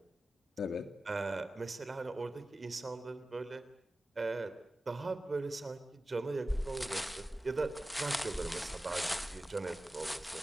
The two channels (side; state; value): both; normal; correlation 0.95